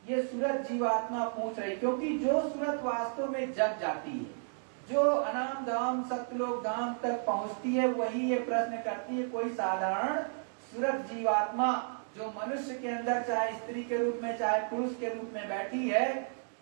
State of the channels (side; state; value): left; silent; digital silence